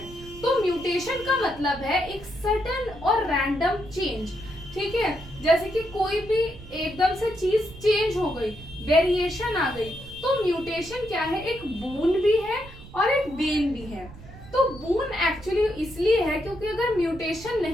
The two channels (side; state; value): right; noise; rumble, 17 dB below the sound